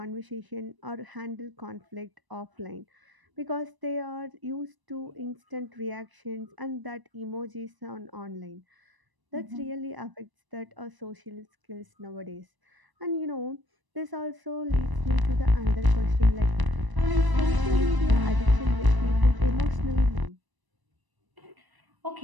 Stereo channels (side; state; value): left; late; 1.0 ms